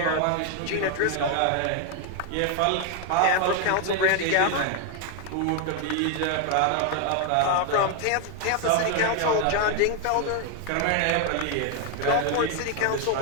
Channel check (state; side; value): different; both; correlation 0.01